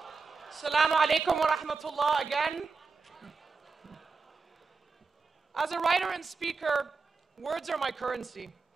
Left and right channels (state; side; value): quieter; left; 4.6 dB